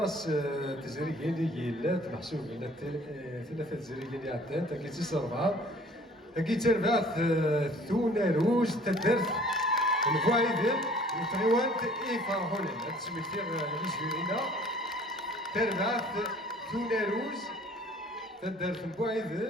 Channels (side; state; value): both; normal; correlation 0.52